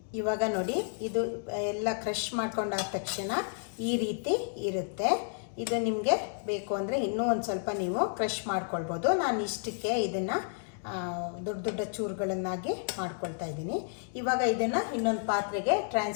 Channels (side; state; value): right; silent; digital silence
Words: ಇವಾಗ ನೋಡಿ, ಇದು ಎಲ್ಲ ಕ್ರಷ್ ಮಾಡ್ಕೊಂಡಾದ ತಕ್ಷಣ ಈ ರೀತಿ ಇರುತ್ತೆ. ಇದು ನಿಮಗೆ ಬೇಕು ಅಂದರೆ ಇನ್ನೂ ಒಂದು ಸ್ವಲ್ಪ ನೀವು ಕ್ರಷ್ ಮಾಡ್ಕೊಳ್ಬೋದು. ನಾನು ಇಷ್ಟಕ್ಕೆ ಇದನ್ನು ದೊಡ್ಡ ಚೂರುಗಳನ್ನಾಗಿ ಮಾಡ್ಕೊಳ್ತಾ ಇದ್ದೀನಿ. ಇವಾಗ ಇದನ್ನು ಇನ್ನೊಂದು ಪಾತ್ರೆಗೆ